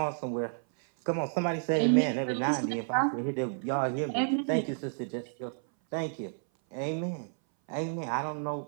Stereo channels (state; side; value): silent; left; 57 dB below the other